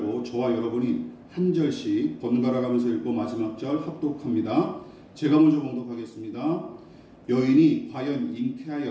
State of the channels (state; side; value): identical; both; correlation 1.00